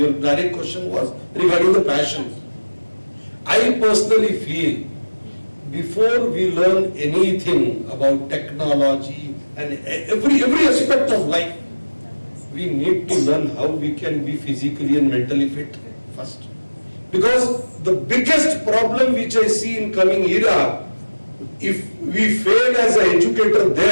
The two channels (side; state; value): both; inverted; correlation -1.00